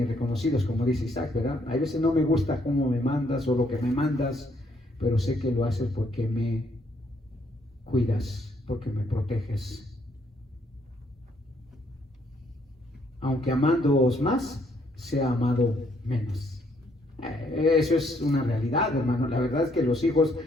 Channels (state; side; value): normal; both; correlation 0.70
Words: reconocidos, como dice Isaac, ¿verdad? A veces no me gusta cómo me mandas o lo que me mandas, pero sé que lo haces porque me cuidas, porque me proteges. Aunque amándoos más, sea amado menos. Eso es una realidad, hermano. La verdad es que los hijos